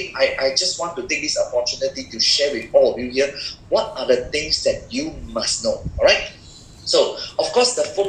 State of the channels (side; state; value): both; identical; correlation 1.00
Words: I just want to take this opportunity to share with all of you here what are the things that you must know, all right? So, of course, the